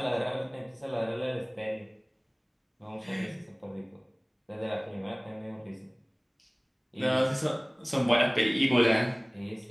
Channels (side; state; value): both; identical; correlation 1.00